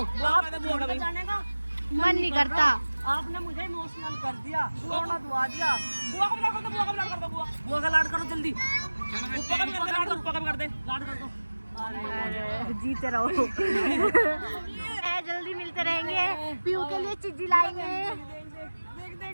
बुआ का कर दे, बुआ का भी। जाने का मन नहीं करता। आपने मुझे इमोशनल कर दिया, बुआ दुआ दिया। बुआ का भी लाड़ कर दे, बुआ का भी लाड़ कर दे, बुआ बुआ का लाड करो जल्दी, ऊपर का भी कर दे, लाड़ ऊपर का भी कर दे। लाड कर दो। जीते रहो। जल्दी मिलते रहेंगे। पीयू के लिए चिज्जी लाएंगे।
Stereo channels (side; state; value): both; inverted; correlation -1.00